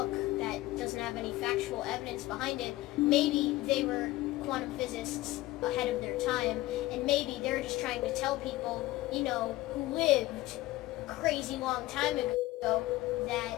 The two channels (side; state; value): right; quieter; 17.9 dB